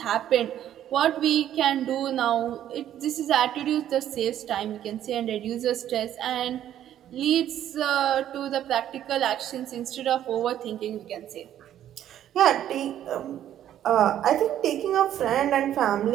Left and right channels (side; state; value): left; quieter; 11.3 dB